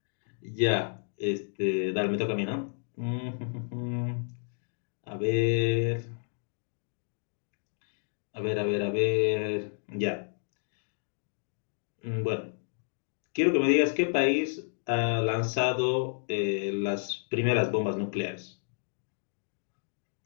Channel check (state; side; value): silent; right; digital silence